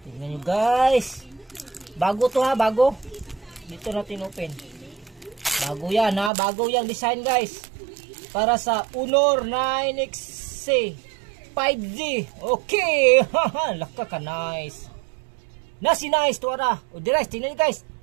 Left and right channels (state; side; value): drops out; left; at 6.3 s